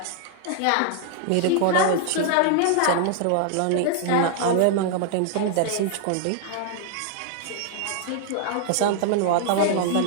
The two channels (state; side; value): different; both; correlation 0.00